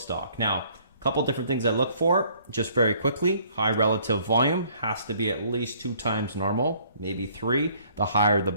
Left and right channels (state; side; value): inverted; both; correlation -0.60